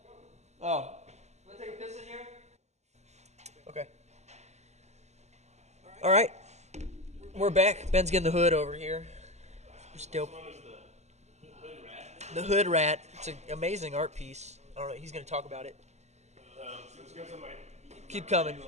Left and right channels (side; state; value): left; late; 0.33 ms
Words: Oh. Want to take a piss in here? Okay. All right. We're back. Ben's getting the hood over here. It's dope. The Hood Rat. It's an amazing art piece. I don't know. He's going to talk about it. Keep coming.